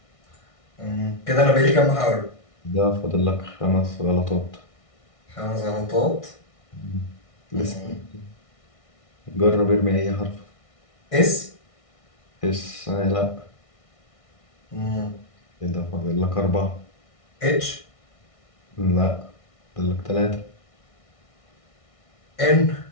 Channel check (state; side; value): late; right; 1.6 ms